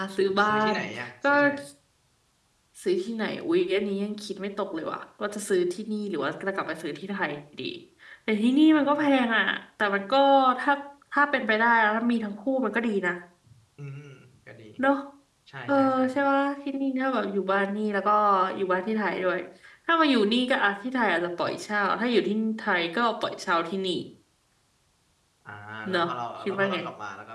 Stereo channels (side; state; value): both; identical; correlation 1.00